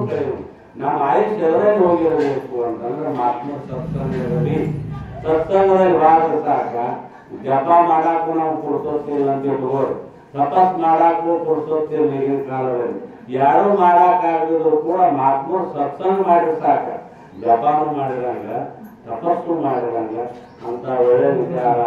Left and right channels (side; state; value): both; identical; correlation 1.00